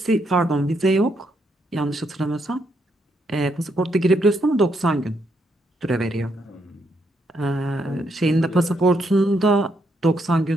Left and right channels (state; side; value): normal; both; correlation 0.77